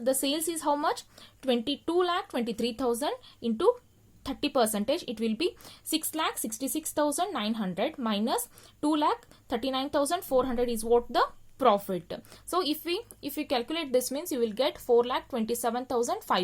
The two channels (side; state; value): both; identical; correlation 1.00